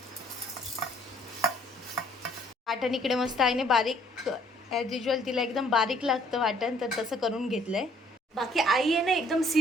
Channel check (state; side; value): normal; both; correlation 0.62